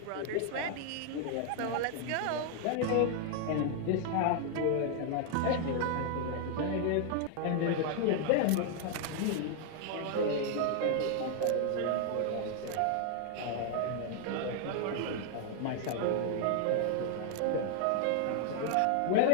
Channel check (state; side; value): different; both; correlation 0.00